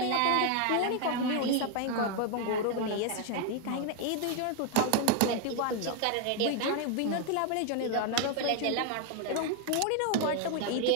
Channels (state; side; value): different; both; correlation 0.01